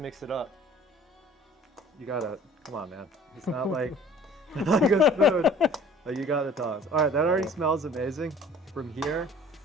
it up. You gotta, come on, man. It's not like, like a spoon. Like you got the tongs. All right, that already smells amazing. From here,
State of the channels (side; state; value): both; normal; correlation 0.49